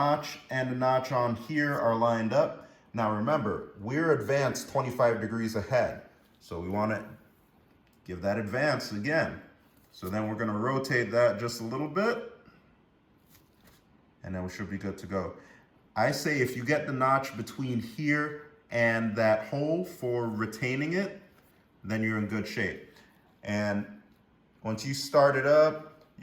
and the notch on here are lined up. Now remember, we're advanced 25 degrees ahead. So we want to give that advance again. So then we're going to rotate that just a little bit, and then we should be good to go. I say if you get the notch between here and that hole for retaining it, then you're in good shape. And once you start it up,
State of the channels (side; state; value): both; identical; correlation 1.00